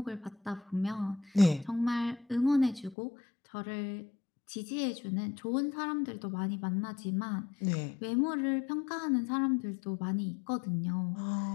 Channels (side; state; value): right; drops out; at 3.0 s